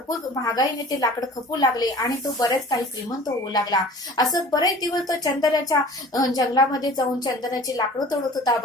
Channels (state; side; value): normal; both; correlation 0.45